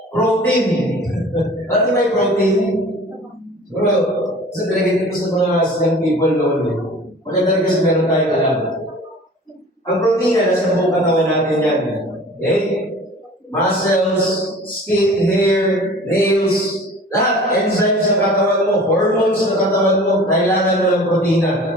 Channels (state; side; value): normal; both; correlation 0.44